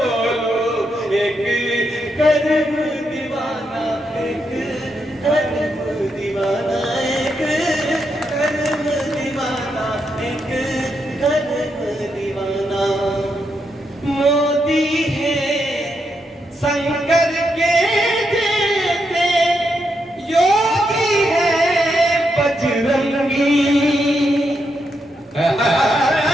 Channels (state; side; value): normal; both; correlation 0.82